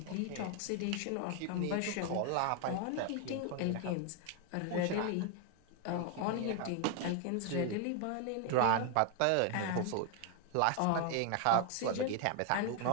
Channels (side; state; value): both; different; correlation 0.00